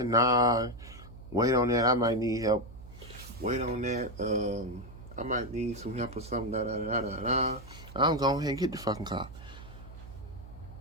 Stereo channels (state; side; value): noise; right; hum, 16 dB below the sound